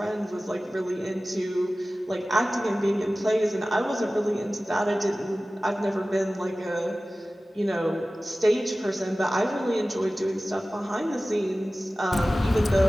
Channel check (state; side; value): normal; both; correlation 0.96